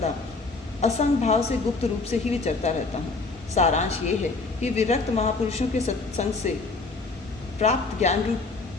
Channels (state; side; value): quieter; right; 3.8 dB